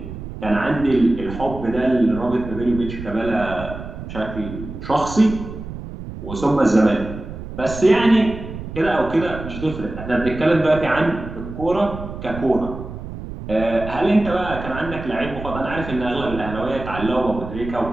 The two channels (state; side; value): noise; right; rumble, 10 dB below the sound